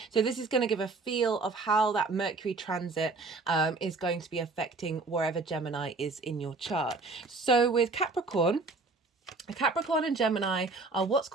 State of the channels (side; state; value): left; quieter; 3.7 dB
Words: So this is going to give a feel of how that Mercury transit is going to be affecting wherever Gemini is in your chart. So with Capricorn and Gemini are what's